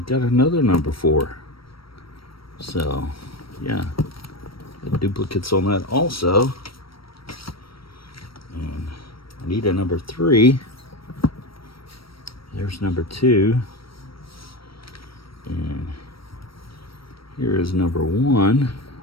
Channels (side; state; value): right; late; 0.75 ms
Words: got another number 4. So yeah, got duplicates on that also. And I need a number 3. There's number 2. And here is number 1.